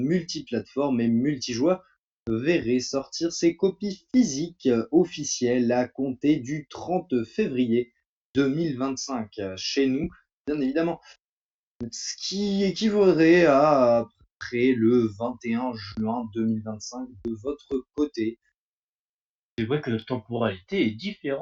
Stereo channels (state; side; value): identical; both; correlation 1.00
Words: et multijoueur verrait sortir ses copies physiques officielles à compter du 30 février 2025 chez nous, bien évidemment. Ce qui équivaudrait à peu près le 21 juin 2025 de votre côté. C'est vrai que la temporalité est